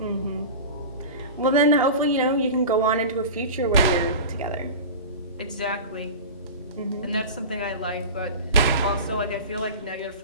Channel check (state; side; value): inverted; both; correlation -0.31